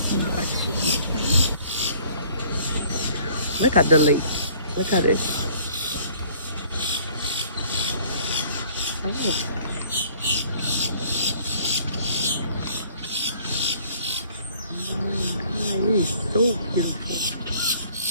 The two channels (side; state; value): both; inverted; correlation -0.56